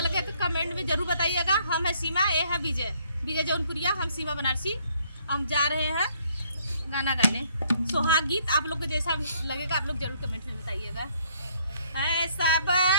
तो कमेंट में जरूर बताइएगा। हम है सीमा, ये है विजय, विजय जौनपुरिया, हम सीमा बनारसी। हम जा रहे हैं गाना गाने सुहाग गीत। आप लोग को जैसा लगेगा आप लोग जरूर कमेंट में बताइएगा। ऐसा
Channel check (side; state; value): both; inverted; correlation -0.65